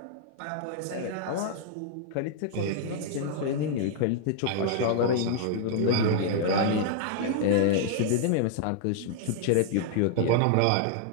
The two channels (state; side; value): different; both; correlation 0.00